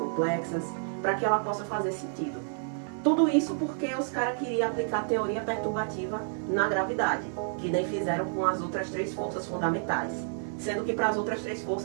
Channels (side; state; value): left; silent; digital silence